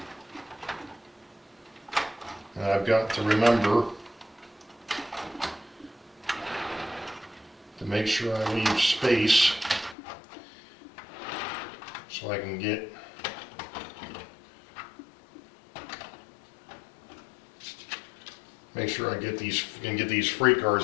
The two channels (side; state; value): right; drops out; at 10.0 s